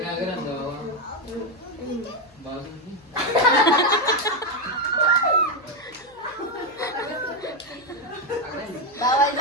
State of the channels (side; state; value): left; noise; hum, 30 dB below the sound